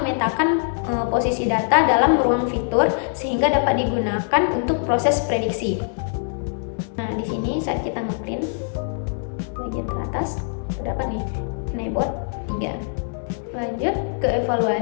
posisi data dalam ruang fitur sehingga dapat digunakan untuk proses prediksi. Nah, di sini saat kita ngeprint bagian teratas terdapat nih keyboard 3. Lanjut ke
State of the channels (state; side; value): silent; right; digital silence